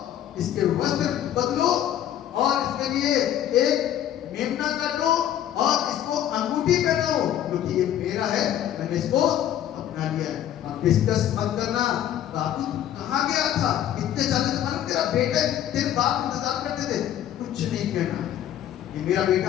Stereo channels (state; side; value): quieter; right; 11.1 dB